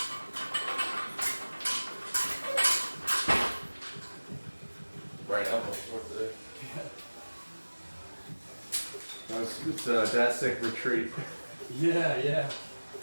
Right elbow short today. It's Dat Sick Retreat. Yeah, yeah.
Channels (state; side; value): inverted; both; correlation -1.00